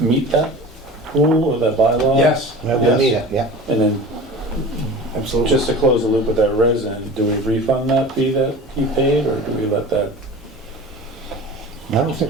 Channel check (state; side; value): normal; both; correlation 0.36